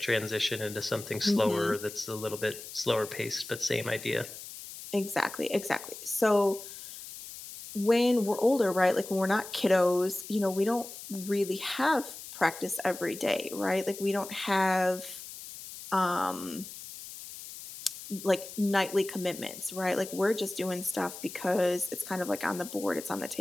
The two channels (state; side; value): noise; left; hiss, 12 dB below the sound